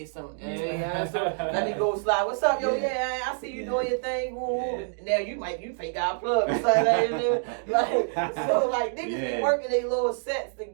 some. So let me go slide. What's up, yo? Yeah, I see you doing your thing. Woo. Now you fake out plug. So like niggas be working their little sets to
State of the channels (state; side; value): silent; left; digital silence